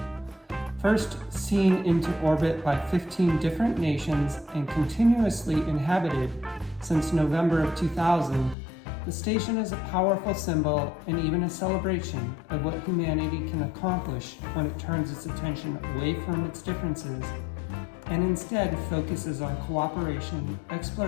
First seen into orbit by 15 different nations and continuously inhabited since November of 2000, the station is a powerful symbol and even a celebration of what humanity can accomplish when it turns its attention away from its differences and instead focuses on cooperation,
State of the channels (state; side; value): drops out; right; at 8.6 s